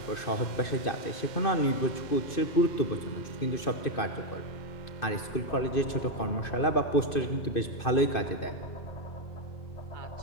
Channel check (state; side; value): late; right; 2.6 ms